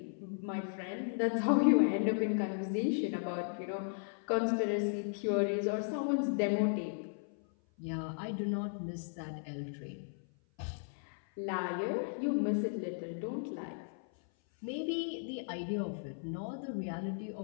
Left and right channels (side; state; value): right; silent; 54 dB below the other